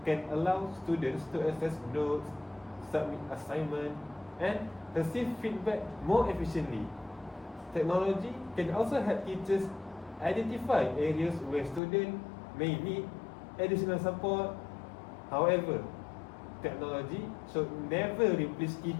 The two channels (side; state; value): right; drops out; at 11.8 s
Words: can allow students to access notes, submit assignments, and receive feedback more efficiently. Technology can also help teachers identify areas where students may need additional support. However, technology should never replace